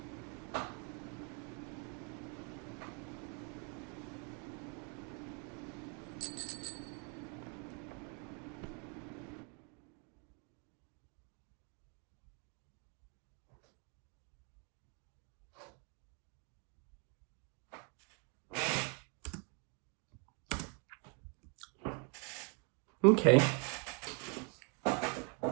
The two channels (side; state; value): left; quieter; 36.5 dB